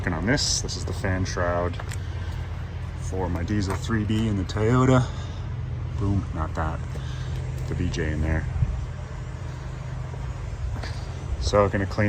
on this. This is the fan shroud for my diesel 3B in the Toyota. Boom, not that. The BJ in there. So I'm gonna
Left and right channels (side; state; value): both; identical; correlation 1.00